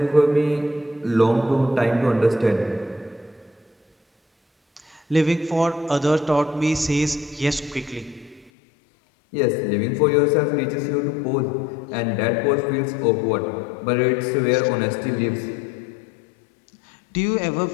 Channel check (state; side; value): drops out; right; at 8.5 s